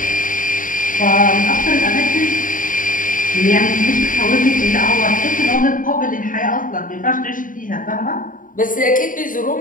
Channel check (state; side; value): late; right; 0.39 ms